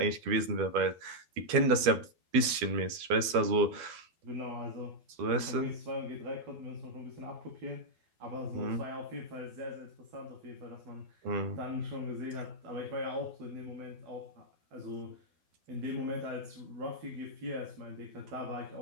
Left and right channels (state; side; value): late; left; 12 ms